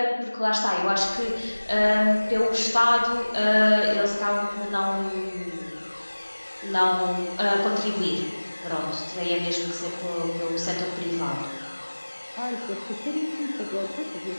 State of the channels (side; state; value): both; inverted; correlation -1.00